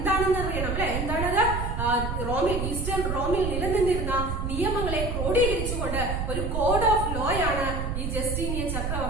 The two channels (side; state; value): right; noise; rumble, 2 dB below the sound